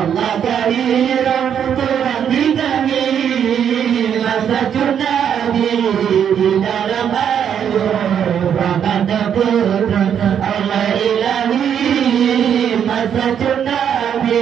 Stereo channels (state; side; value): quieter; left; 8.5 dB